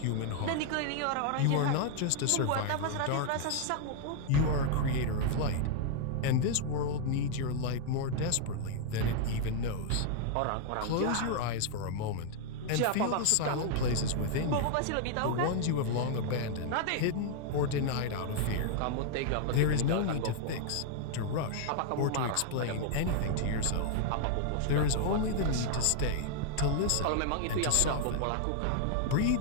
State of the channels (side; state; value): both; different; correlation 0.00